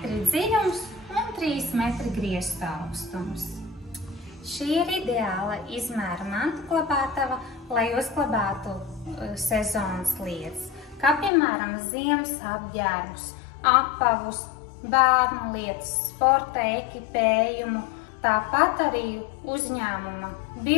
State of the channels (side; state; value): right; drops out; at 11.3 s